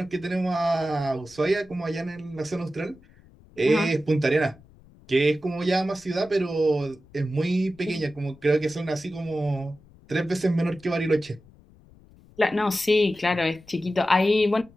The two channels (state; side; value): noise; left; rumble, 26 dB below the sound